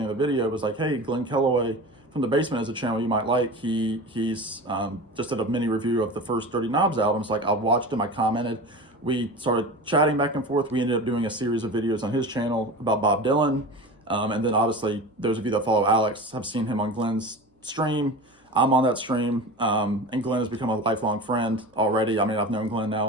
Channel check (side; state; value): both; normal; correlation 0.32